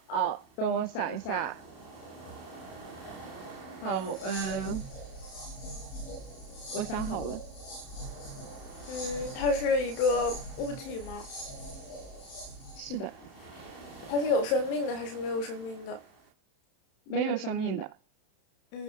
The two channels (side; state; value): right; late; 31 ms